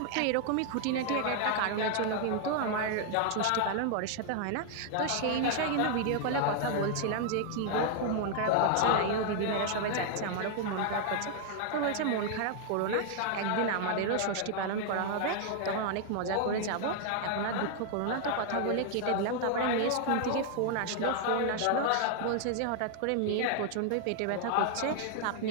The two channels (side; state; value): both; different; correlation 0.00